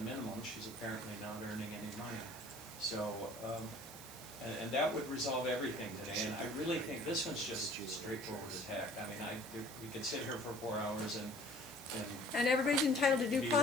She's apparently not earning any money. So, and that would resolve everything today, and I really think this one's just straightforward attack. I mean, we could sit here for 4 hours and And everybody's entitled to due Be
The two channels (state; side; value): noise; right; hiss, 15 dB below the sound